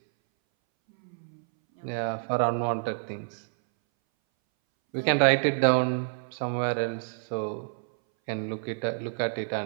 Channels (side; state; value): left; silent; 59 dB below the other